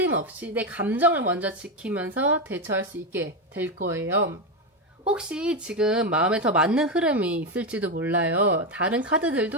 없이 내 감정을 먼저 지키면서 대처할 수 있게 될 거예요. 혹시 지금 마음에 더 맞는 흐름이 있을지도 몰라요. 다른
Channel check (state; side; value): normal; both; correlation 0.11